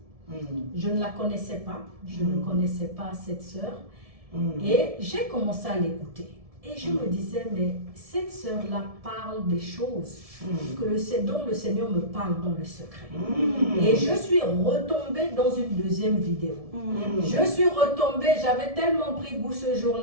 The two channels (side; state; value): left; late; 1.7 ms